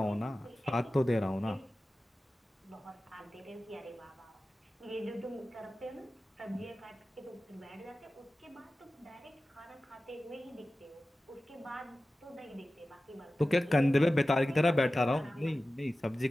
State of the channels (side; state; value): both; normal; correlation 0.95